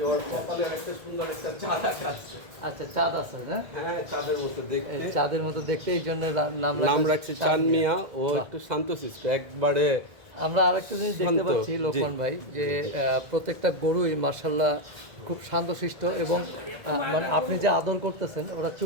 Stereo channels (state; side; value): late; left; 1.7 ms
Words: ওর কপালে একটা সুন্দর একটা চাঁদ আছে। আচ্ছা চাঁদ আছে না? হ্যাঁ, চাঁদের মতো দেখতে। এই চাঁদের মতো দেখতে, এই জন্য নাম রাখছে চানমিয়া। ও একটু শান্তশিষ্ট একবারে। আমরা আরেকটা জিনিস দেখতে শান্ত, পাচ্ছি জি। লোকমান ভাই, যে প্রত্যেকটা গরুই মার্শাল্লাহ খুব শান্তশিষ্ট, এবং মানে আপনি যে আদর করতেছেন ওরা